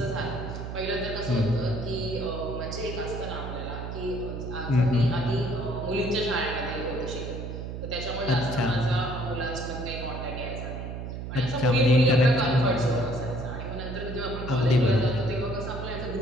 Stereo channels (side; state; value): right; noise; hum, 7 dB below the sound